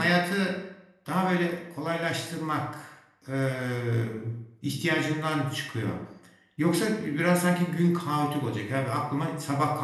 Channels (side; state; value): both; identical; correlation 1.00